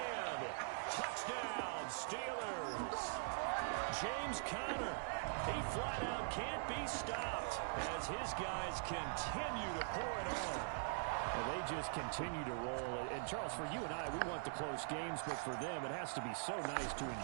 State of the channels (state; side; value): silent; left; digital silence